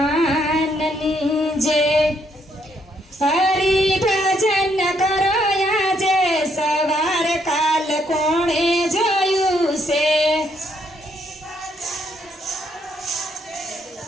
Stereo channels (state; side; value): normal; both; correlation 0.73